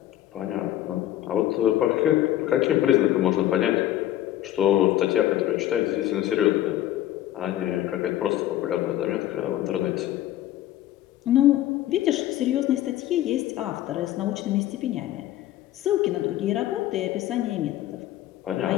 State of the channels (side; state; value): right; quieter; 13.4 dB